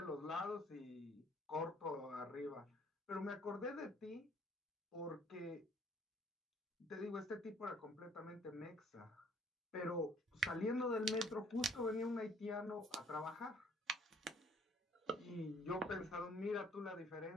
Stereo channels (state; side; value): normal; both; correlation 0.59